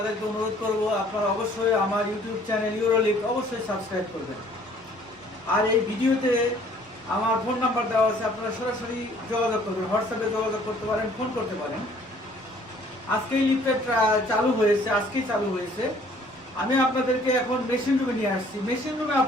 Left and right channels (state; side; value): normal; both; correlation 0.57